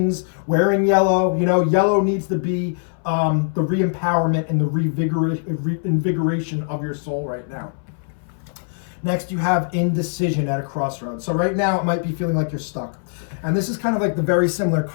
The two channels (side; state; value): right; silent; 62 dB below the other